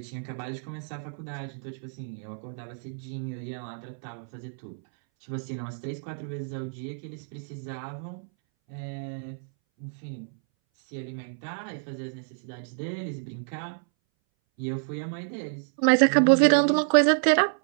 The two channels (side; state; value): left; silent; 59 dB below the other